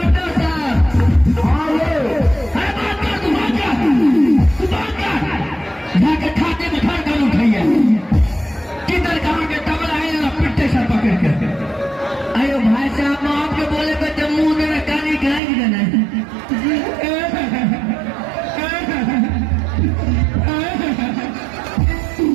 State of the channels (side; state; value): left; drops out; at 15.4 s